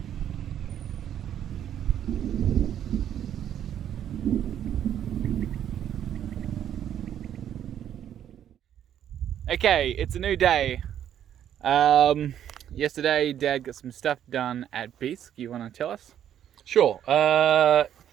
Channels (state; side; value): quieter; left; 10.1 dB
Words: Okay, it's a new day. Yesterday, Dad got some stuff done at Beesk. You want to tell us? Sure. In